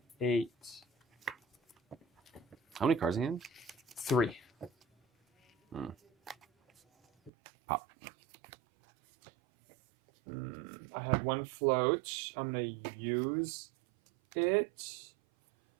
8. How many cards in hand? 3. Pop. I had 1 float. I'm gonna use it.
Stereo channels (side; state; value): left; drops out; at 7.3 s